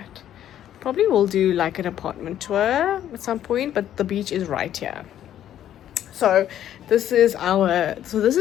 Probably will do like an apartment tour at some point, but the beach is right here. So this is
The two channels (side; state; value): right; quieter; 11.2 dB